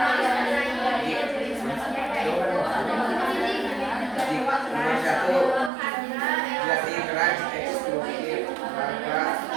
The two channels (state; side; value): drops out; left; at 5.7 s